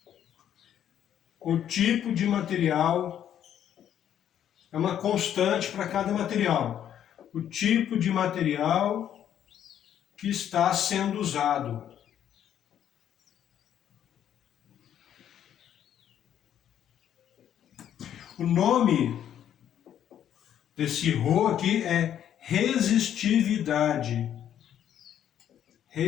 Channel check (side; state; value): right; quieter; 10.1 dB